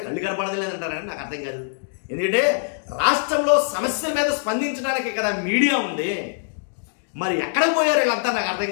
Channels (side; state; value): right; silent; digital silence